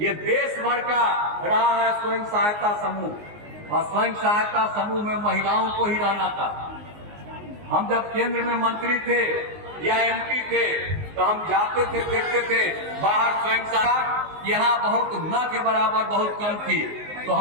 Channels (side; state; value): left; late; 19 ms